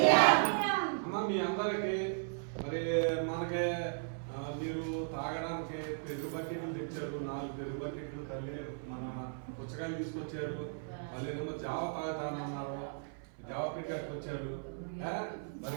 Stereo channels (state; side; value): silent; left; 54 dB below the other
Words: అమ్మ మీ అందరికి మరి మనకి మీరు తాగడానికి పెరుగు బకెట్లు తెచ్చారు, 4 పెరుగు బకెట్లు తల్లి మన పుచ్చకాయలు తీసుకొచ్చారు. మళ్ళీ ఏమో జావ తాగుతానన్నారు, జావ పెట్టారు వచ్చారు.